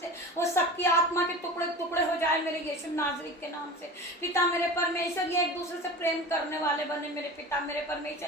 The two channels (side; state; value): both; normal; correlation 0.34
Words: से, वो शक्ति आत्मा के टुकड़े टुकड़े हो जाए मेरे यीशु नाज़री के नाम से। पिता मेरे परमेश्वर, ये एक दूसरे से प्रेम करने वाले बने मेरे पिता मेरे